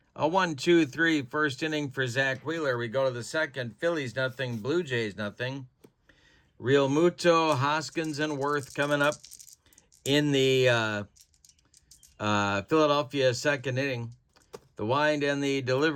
A 1-2-3 first inning for Zach Wheeler. We go to the second. Phillies nothing, Blue Jays nothing. Real Muto, Hoskins, and Worth coming up in the Philadelphia second inning. The wind and the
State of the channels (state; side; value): identical; both; correlation 1.00